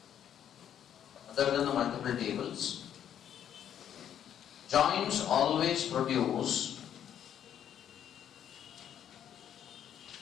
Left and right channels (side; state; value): right; quieter; 9.8 dB